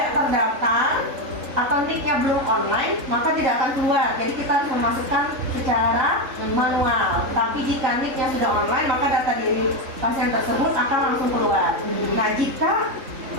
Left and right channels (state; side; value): late; left; 3.7 ms